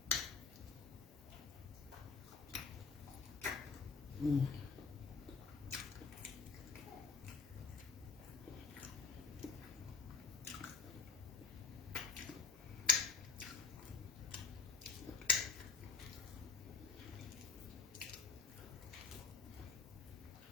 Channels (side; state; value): right; quieter; 5.3 dB